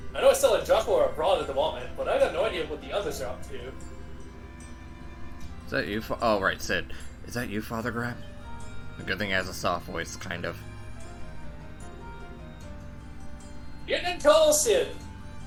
I know it's still in Joshua or abroad at the moment, but I got no idea what the others are up to. Is that you? Oh, right, Sid. Is that you, Father Graham? A good thing he has a soft voice, kind of. Getting in tall, Sid!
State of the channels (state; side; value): identical; both; correlation 1.00